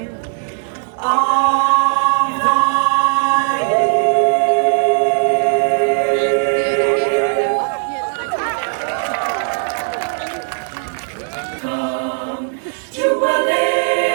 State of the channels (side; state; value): left; silent; digital silence